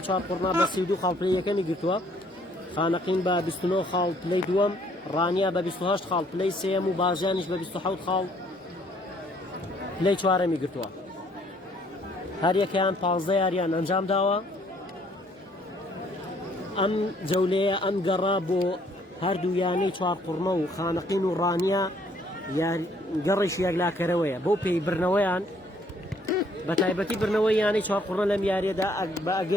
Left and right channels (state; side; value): normal; both; correlation 0.64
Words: چوارقڕنا بە 32 خاڵ پلەیەکەمی گرتووە خانەقین بە 29 خاڵ پلەی دووەم ڕانیا بە 28 خاڵ پلەی سێم و بازیانیش بە 27 خاڵ پلەی چوارەمی گرتووە هەر یەکەیان 15 یاریان ئەنجام داوە ئەم جەولەیە ئەم گەڕا بۆ هەردوو یانەی چوارقڕنە و خانەقین و ڕانیا گەڕیش یەکلاکەرەوەیە بۆ پێی برنەوەیان بە تایبەتی برنەوەی یانەی چوارقڕنە لەم یاریەدا بە